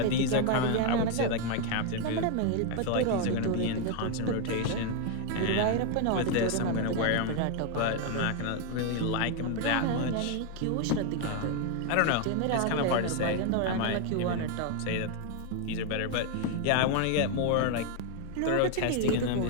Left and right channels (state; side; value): different; both; correlation 0.01